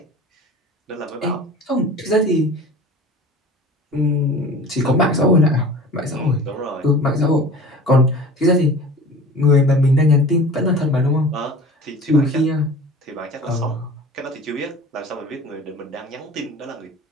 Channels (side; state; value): both; normal; correlation 0.40